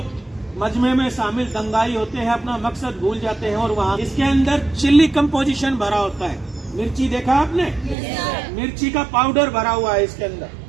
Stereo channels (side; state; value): left; drops out; at 8.0 s